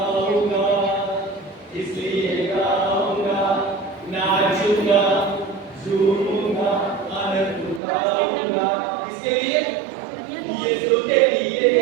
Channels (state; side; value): drops out; left; at 7.8 s